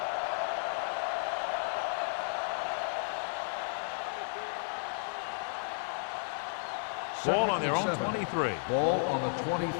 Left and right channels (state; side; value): silent; right; digital silence